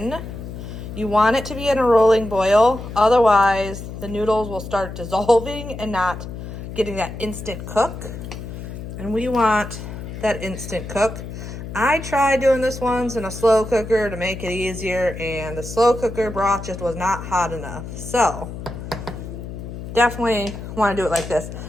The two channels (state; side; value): noise; left; hum, 9 dB below the sound